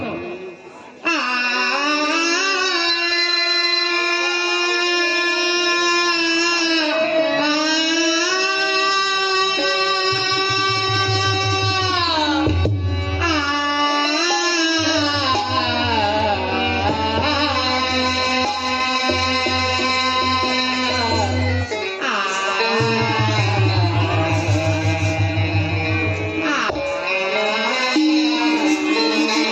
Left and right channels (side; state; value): both; identical; correlation 1.00